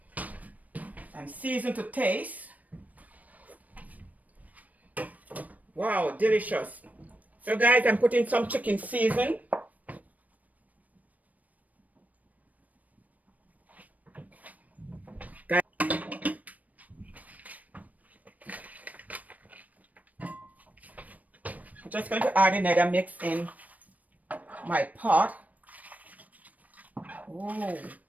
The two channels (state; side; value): late; left; 0.073 ms